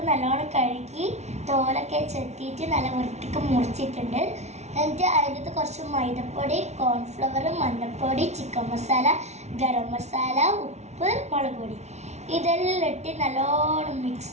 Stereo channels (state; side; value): late; left; 0.32 ms